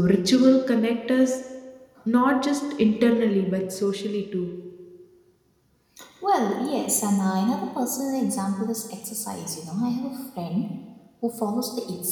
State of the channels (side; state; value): both; identical; correlation 1.00